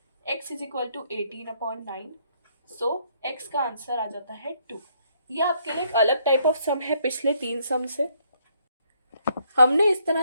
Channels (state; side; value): inverted; both; correlation -0.69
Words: x is equal to 18/9। So x का आंसर आ जाता है 2। ये आपके लिए एक अलग टाइप ऑफ सम है पिछले 3 सम से। हमने इस तरह